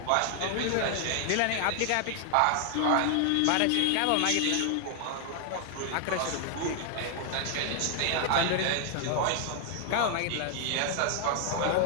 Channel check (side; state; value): both; different; correlation 0.00